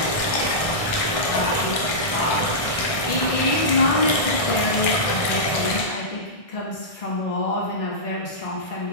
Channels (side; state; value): right; late; 1.6 ms